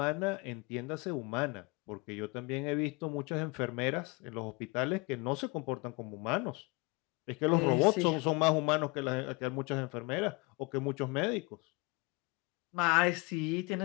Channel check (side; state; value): right; quieter; 26.9 dB